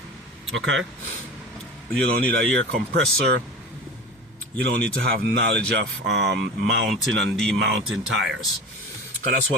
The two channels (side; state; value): both; normal; correlation 0.34